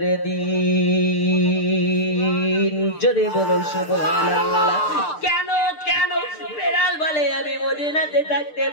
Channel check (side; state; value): right; late; 6.7 ms